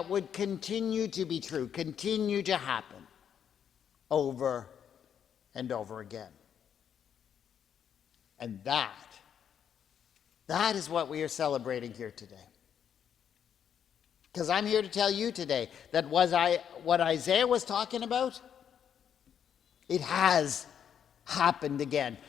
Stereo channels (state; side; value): quieter; right; 8.6 dB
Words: would continue to be true, continue to happen over and over again. And that is what we are celebrating here today. Because I'm here to tell you today that what Isaiah was talking about, it has happened again.